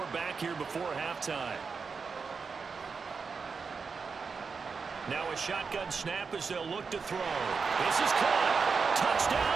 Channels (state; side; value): quieter; left; 5.2 dB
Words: back here before halftime. Now a shotgun snap as they'll look to throw. This is caught.